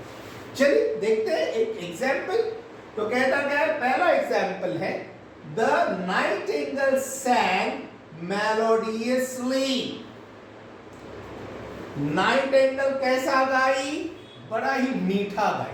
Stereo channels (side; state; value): both; identical; correlation 1.00